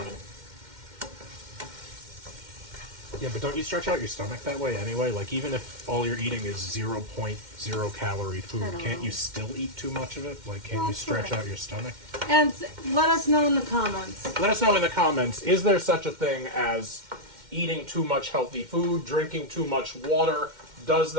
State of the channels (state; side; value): late; left; 2.1 ms